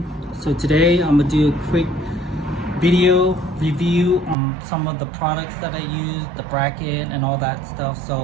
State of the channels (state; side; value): drops out; left; at 4.4 s